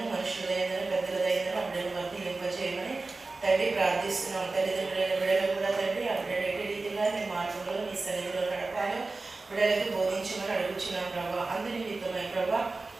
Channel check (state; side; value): quieter; left; 3.6 dB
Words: మనుషుల దయందను, పెద్దల దయందను ఆ బిడ్డను వర్తింపజేయమని తండ్రి ప్రార్థిస్తున్నాం. తల్లిదండ్రులైన బిడ్డలు కూడా తండ్రి ఆ బిడ్డలు ఎట్టి రీతిగా నీ మార్గంలో నీ సన్నిధిలో నడపాలో బిడ్డలకు బోధించమని అడుగుచున్నాం ప్రభా. అందరి నిమిత్తమై ప్రభా,